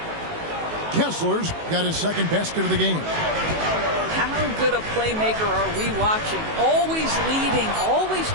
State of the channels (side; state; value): left; late; 19 ms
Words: Kessler's got his second basket of the game. How good a playmaker are we watching? Always leading, always